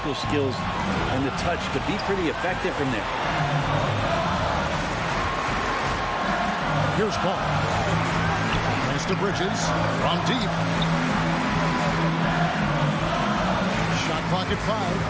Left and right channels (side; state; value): both; identical; correlation 1.00